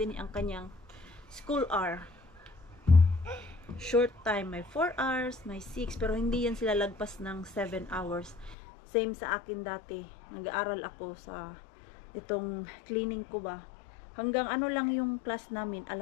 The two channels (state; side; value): drops out; right; at 8.6 s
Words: ang kanyang school hour. Short time. May 4 hours, may 6. Pero hindi yan sila lagpas ng 7 hours. Same sa akin dati. Nag-aaral ako sa itong cleaning ko ba. Hanggang ano lang yung class namin,